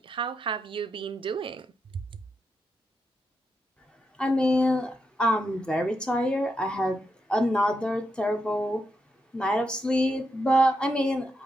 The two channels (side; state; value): both; normal; correlation 0.83